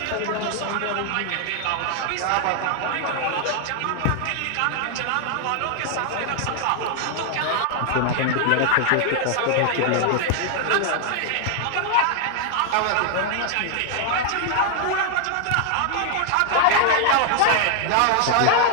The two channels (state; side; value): different; both; correlation 0.00